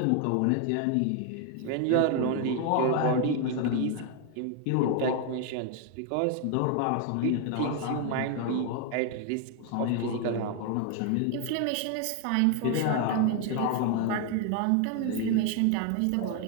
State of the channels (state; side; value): different; both; correlation 0.01